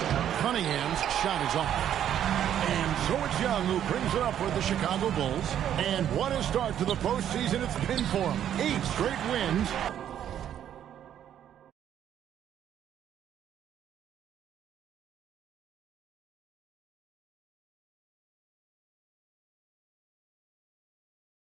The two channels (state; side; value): quieter; left; 10.2 dB